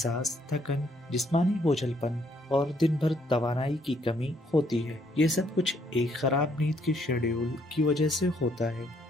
تھکن، جسمانی بوجھل پن اور دن بھر توانائی کی کمی ہوتی ہے؟ یہ سب کچھ ایک خراب نیند کے شیڈیول کی وجہ سے ہوتا ہے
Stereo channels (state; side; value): normal; both; correlation 0.69